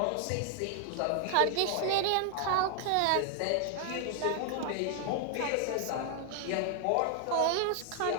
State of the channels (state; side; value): different; both; correlation 0.00